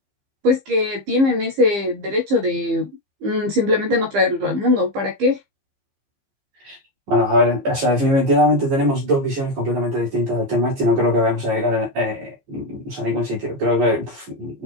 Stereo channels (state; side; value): late; left; 15 ms